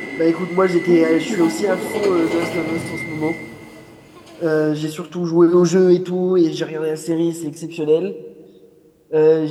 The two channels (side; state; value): both; identical; correlation 1.00